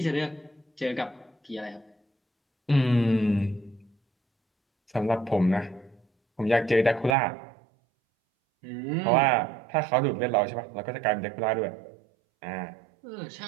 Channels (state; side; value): drops out; left; at 7.2 s